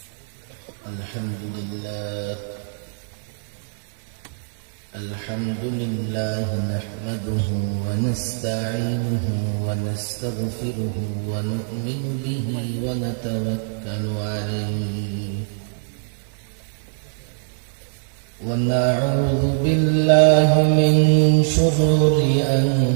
الحمد لله نحمده ونستعينه ونستغفره ونؤمن به ونتوكل عليه ونعوذ بالله من شرور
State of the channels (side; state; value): left; silent; 64 dB below the other